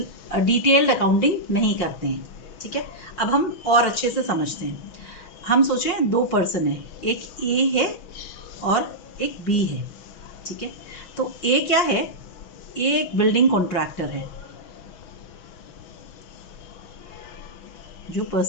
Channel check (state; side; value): late; right; 6.0 ms